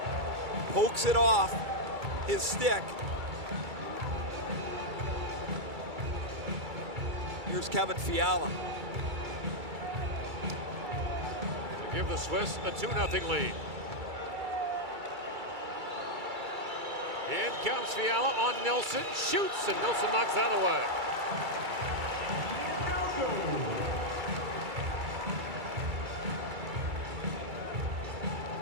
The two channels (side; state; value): left; late; 2.3 ms